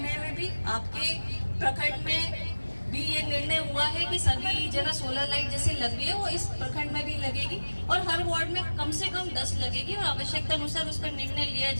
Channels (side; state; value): both; inverted; correlation -1.00